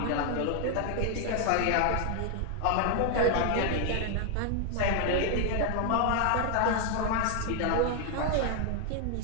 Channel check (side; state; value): both; different; correlation 0.00